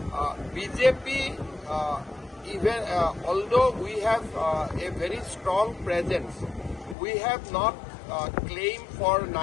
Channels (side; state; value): right; drops out; at 7.0 s